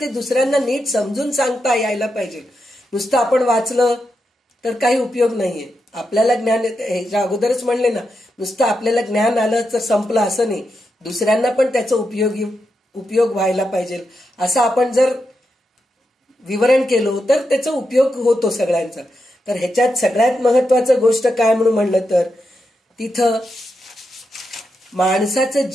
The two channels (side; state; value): both; normal; correlation 0.86